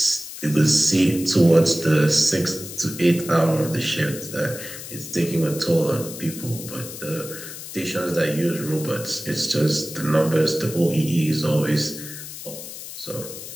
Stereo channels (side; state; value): left; noise; hiss, 11 dB below the sound